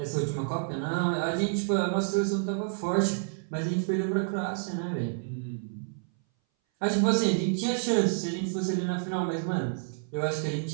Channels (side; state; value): left; silent; 58 dB below the other